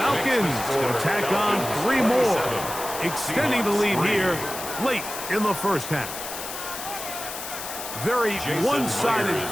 going to tack on 3 more, extending the lead here late in the 1st half. Very one-sided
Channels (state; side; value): noise; left; hiss, 8 dB below the sound